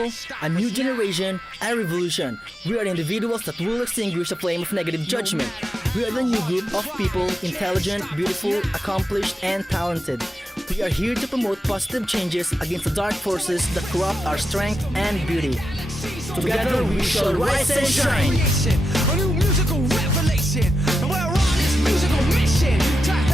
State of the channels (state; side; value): normal; both; correlation 0.88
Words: a new generation, a revolution. We are individuals that will extinguish the flame of negative judgment. We are the new group of people, intelligent, beautiful, accomplished, and talented. We are here to promote positive changes against the dark forces that corrupt our strength and beauty. Together we shall rise and shine. A new musical revelation, and we're on this musical mission to